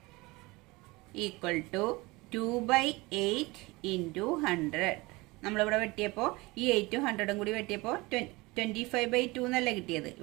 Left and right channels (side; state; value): left; quieter; 23.0 dB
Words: Equal to 2/8 into 100. നമ്മളിവിടെ വെട്ടിയപ്പോൾ ഈ 8ഉം 100ഉം കൂടി വെട്ടിയപ്പോൾ 25/2 എന്നല്ല കിട്ടിയത്.